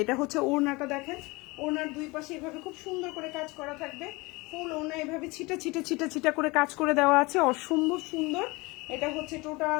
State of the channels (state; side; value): quieter; right; 24.3 dB